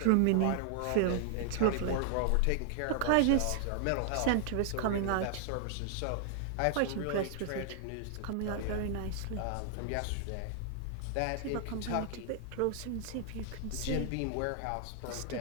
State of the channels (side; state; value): both; different; correlation 0.00